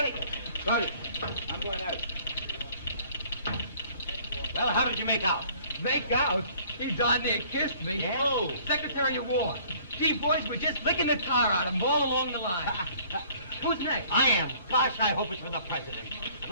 Ready. I'm going out. Well, how did you make out? Make out? He darn near kissed me. Yeah? Oh, Secretary of War. Gee, boys, we're just licking the tar out of him all along the line. Who's next? I am. Gosh, I hope it's for the President. I'd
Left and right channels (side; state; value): both; inverted; correlation -0.56